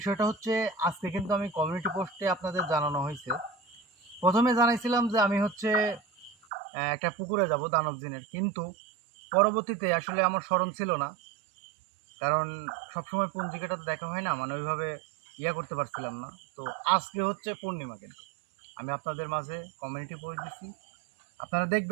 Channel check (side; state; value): left; drops out; at 6.4 s